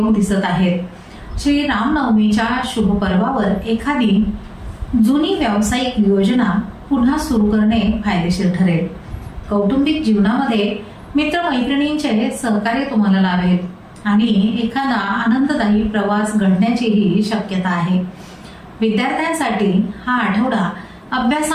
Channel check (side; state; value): both; identical; correlation 1.00